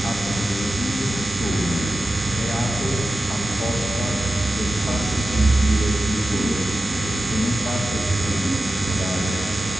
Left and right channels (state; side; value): normal; both; correlation 0.93